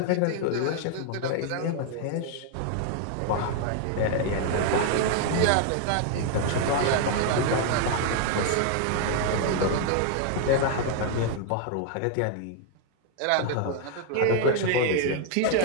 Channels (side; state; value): both; different; correlation 0.00